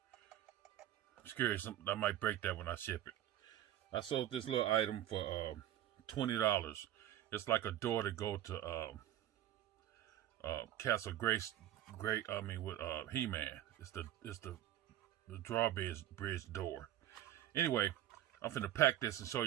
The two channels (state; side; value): quieter; left; 12.3 dB